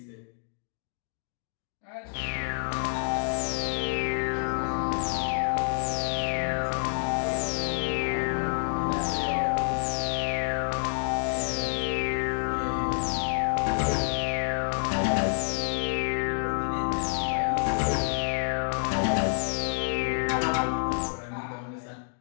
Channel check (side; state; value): right; silent; digital silence